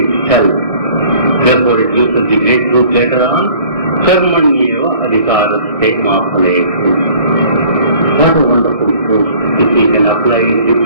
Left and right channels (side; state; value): left; late; 1.6 ms